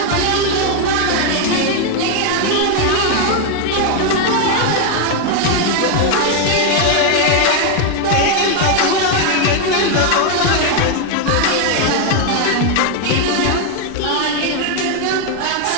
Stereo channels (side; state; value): both; different; correlation 0.01